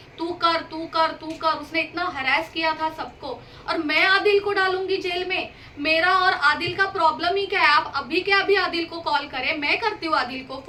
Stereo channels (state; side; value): identical; both; correlation 1.00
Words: तू कर तू कर तू कर। उसने इतना हरास किया था सबको, और मैं आदिल को डालूंगी जेल में? मेरा और आदिल का प्रॉब्लम ही क्या है? आप अभी के अभी आदिल को कॉल करें, मैं करती हूँ आदिल को